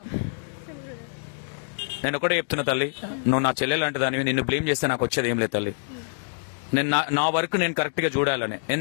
నేను ఒకటే చెప్తున్నా తల్లి, నువ్వు నా చెల్లెలు అంటదానివి, నిన్ను బ్లేమ్ చేస్తే నాకు వచ్చేది ఏం లేదు తల్లి. నేను నా వర్క్ నేను కరెక్ట్ గా చూడాలని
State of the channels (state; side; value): silent; right; digital silence